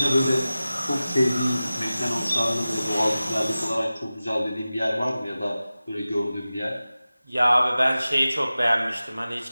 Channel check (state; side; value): inverted; both; correlation -0.96